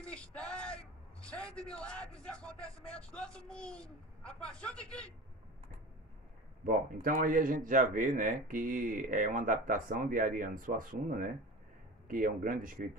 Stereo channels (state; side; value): normal; both; correlation 0.33